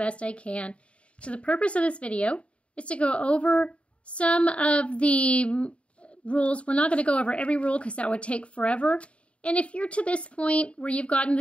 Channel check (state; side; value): late; right; 0.061 ms